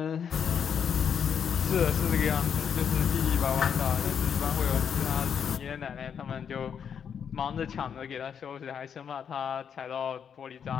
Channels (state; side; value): quieter; right; 7.6 dB